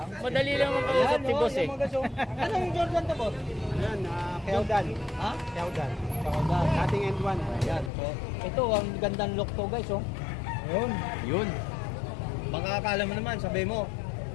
Madali lang makausap si boss eh. Anong Jordan to, boss? Yan, Keodan. Ha? Keodan. Jordan. Ating end one. Ayan. So, ito ang gandang look to, guys, oh. Ayun. Yun. Baka akala mo naman, sabi mo,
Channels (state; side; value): drops out; right; at 7.9 s